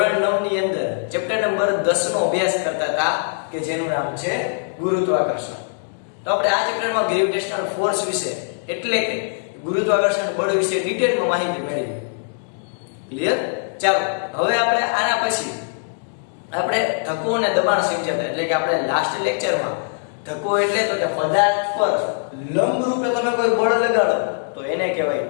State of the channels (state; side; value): silent; right; digital silence